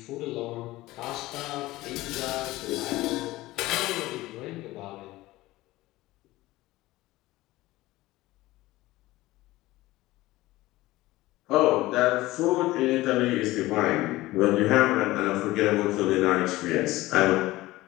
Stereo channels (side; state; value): right; quieter; 18.1 dB